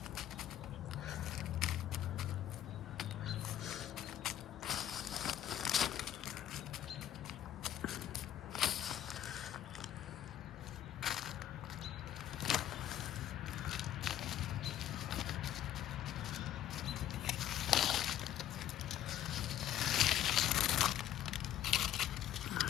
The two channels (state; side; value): quieter; right; 11.5 dB